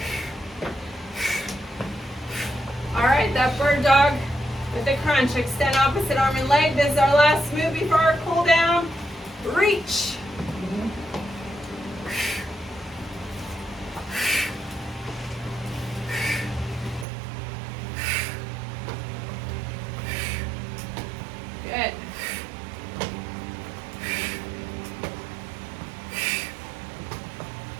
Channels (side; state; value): left; drops out; at 17.1 s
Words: All right, that bird dog with the crunch. Extend opposite arm and leg. This is our last move before our cool down. Reach. Good.